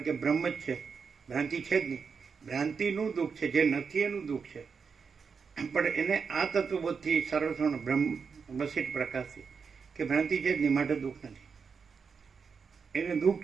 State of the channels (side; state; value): left; quieter; 5.7 dB